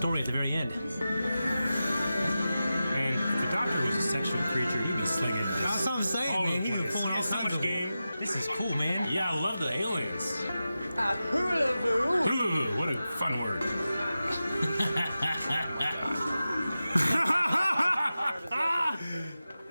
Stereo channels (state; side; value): inverted; both; correlation -0.93